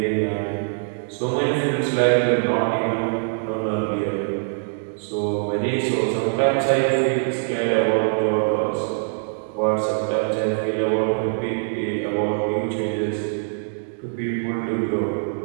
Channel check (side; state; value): left; silent; digital silence